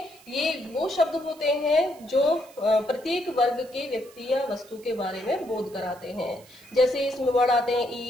ये वो शब्द होते हैं जो प्रत्येक वर्ग के व्यक्ति या वस्तु के बारे में बोध कराते हैं। जैसे इसमें वर्ड आते हैं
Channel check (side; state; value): right; noise; hiss, 24 dB below the sound